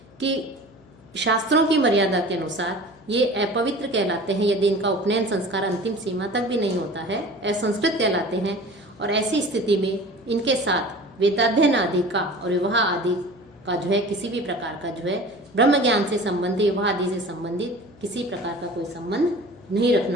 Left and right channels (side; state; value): left; noise; hum, 26 dB below the sound